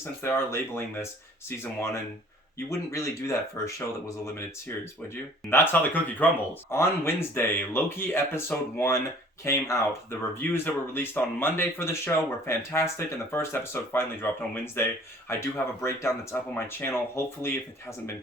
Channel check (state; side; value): normal; both; correlation 0.52